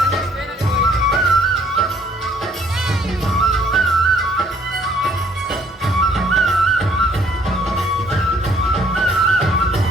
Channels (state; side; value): normal; both; correlation 0.62